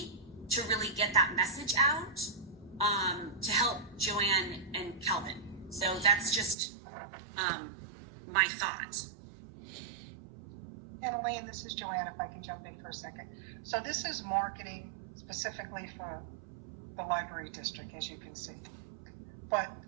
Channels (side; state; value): left; drops out; at 6.6 s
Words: to really get that message out, to help Joanne and Kelvin. So that's just my thought. And Elaine, this is Joanne, if I can jump in for a second. So this is marketing specifically for the library district, as you can see. But,